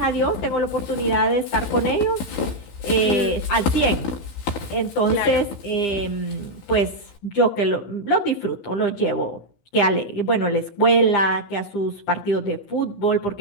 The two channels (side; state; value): right; late; 16 ms